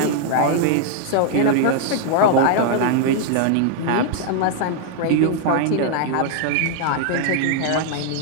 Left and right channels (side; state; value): both; different; correlation 0.00